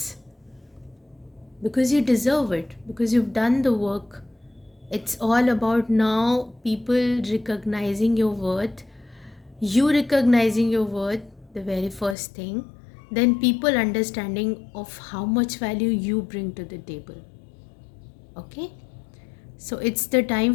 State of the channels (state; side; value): drops out; right; at 12.2 s